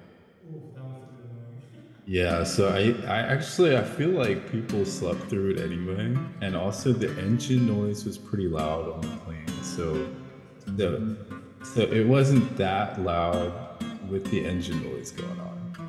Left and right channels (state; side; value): identical; both; correlation 1.00